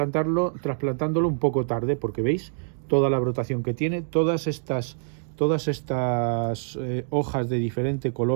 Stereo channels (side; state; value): left; silent; digital silence